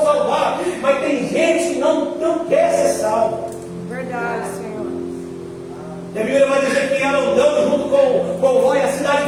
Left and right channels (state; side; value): identical; both; correlation 1.00